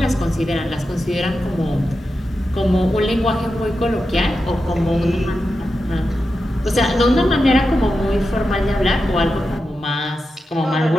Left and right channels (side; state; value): both; normal; correlation 0.90